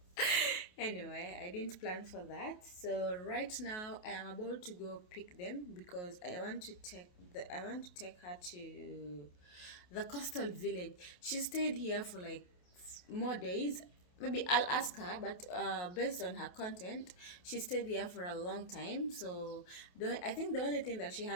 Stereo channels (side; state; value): right; late; 28 ms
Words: Anyway, I didn't plan for that. So right now I am about to go pick them because I want to take her to the coastal village. She stayed here for like more days. Maybe I'll ask her, but based on her content, she stayed here for a long time. So I think the only thing that she